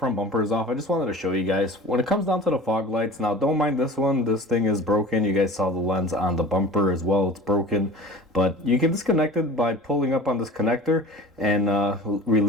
bumper is off, I just wanted to show you guys, when it comes down to the fog lights, now don't mind this one, this thing is broken. You guys saw the lens on the bumper as well, it's broken. But you can disconnect it by pulling up on this connector and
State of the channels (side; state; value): both; normal; correlation 0.39